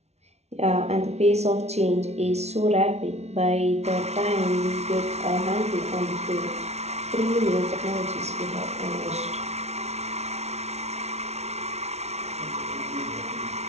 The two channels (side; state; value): left; late; 0.31 ms